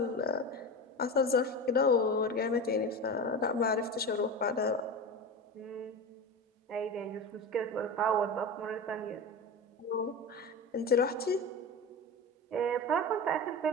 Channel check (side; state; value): both; normal; correlation 0.26